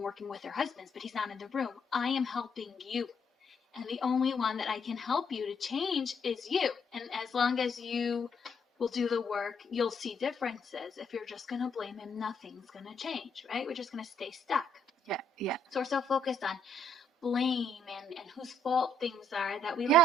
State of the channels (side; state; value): both; normal; correlation 0.71